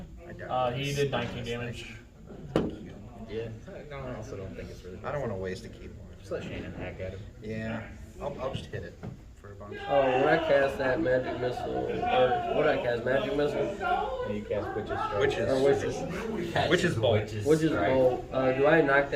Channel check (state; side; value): identical; both; correlation 1.00